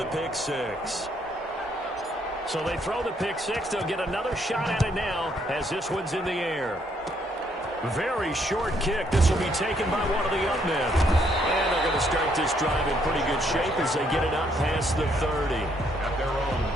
pick 6. So they throw the pick 6. They'll get another shot at it now as this one's in the air. Very short kick. This will be taken by one of the up men. And they're going to start this drive in pretty good shape as they get it up past the 30. At their own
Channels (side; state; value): both; normal; correlation 0.70